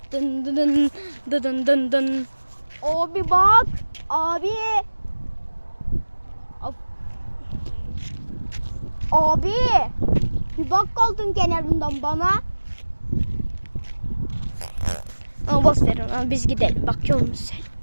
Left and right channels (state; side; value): inverted; both; correlation -1.00